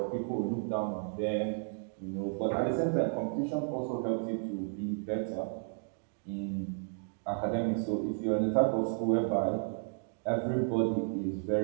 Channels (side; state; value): left; silent; 56 dB below the other